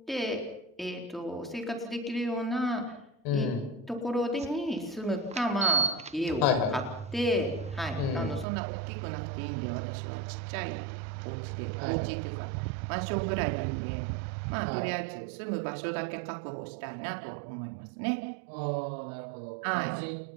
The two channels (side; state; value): left; drops out; at 8.5 s